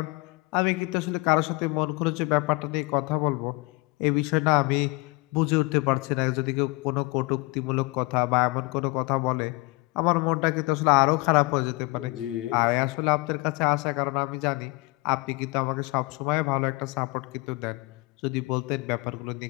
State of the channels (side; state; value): right; quieter; 24.4 dB